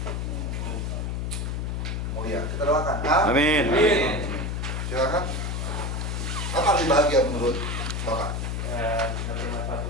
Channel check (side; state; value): left; noise; hum, 2 dB below the sound